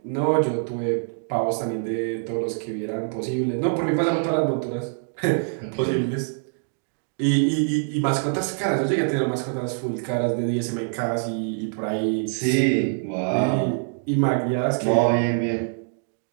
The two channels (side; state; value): left; silent; 62 dB below the other